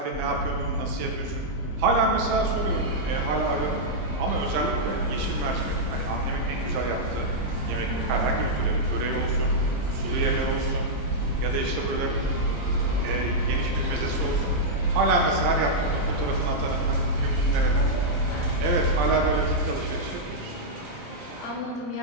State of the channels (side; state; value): both; normal; correlation -0.07